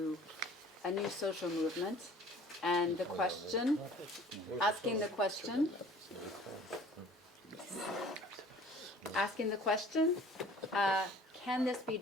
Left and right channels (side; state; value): both; normal; correlation 0.49